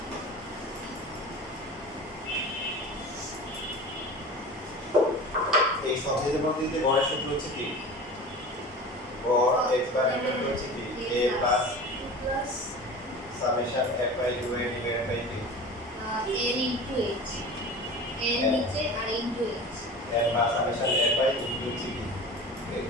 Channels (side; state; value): both; normal; correlation 0.35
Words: এই সহজে পদ্ধতিতে গড়ের সূত্র হচ্ছে কি গড় x বার ইকুয়াল হচ্ছে কি a plus plus summation f by 2 a divided by b n into h n নিচে আর into h n বা সামেশন f বাই 2 হচ্ছে কি